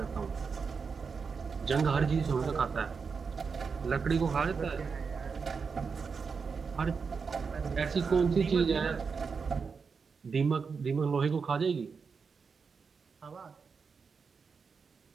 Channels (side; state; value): left; quieter; 5.4 dB